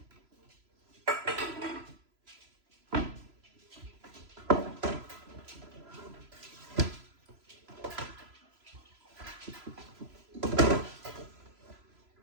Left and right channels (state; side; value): late; left; 3.0 ms